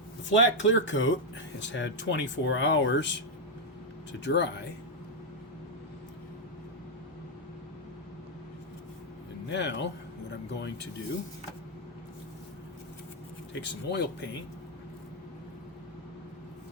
The flat clear coat has had 24 hours to dry. And now what I'm going to do, take some oil paint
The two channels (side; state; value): both; normal; correlation 0.00